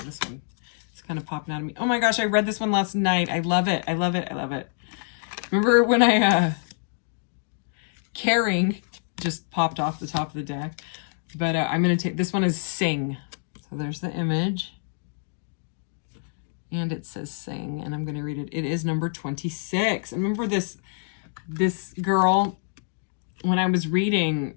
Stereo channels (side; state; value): right; silent; 61 dB below the other